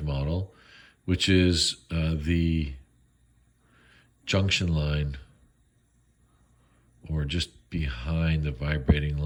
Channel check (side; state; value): both; identical; correlation 1.00